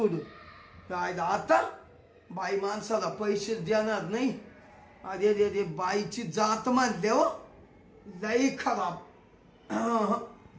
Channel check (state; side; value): identical; both; correlation 1.00